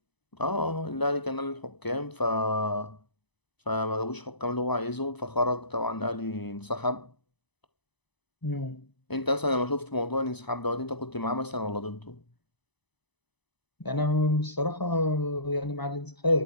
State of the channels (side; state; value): right; late; 0.99 ms